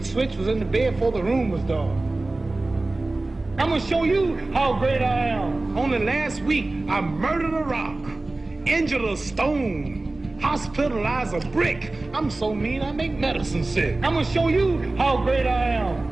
switch, was in the bed before the room was dark. I'm gonna show you how great I am. Only last week I murdered a rock, injured a stone, hospitalized a brick. I'm so mean I make medicine sick. I'm gonna show you how great I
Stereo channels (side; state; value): left; quieter; 3.0 dB